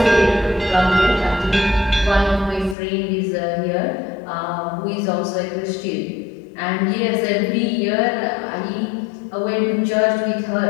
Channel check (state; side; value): drops out; right; at 2.8 s